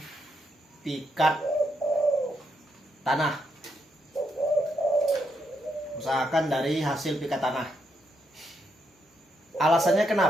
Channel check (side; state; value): both; normal; correlation 0.79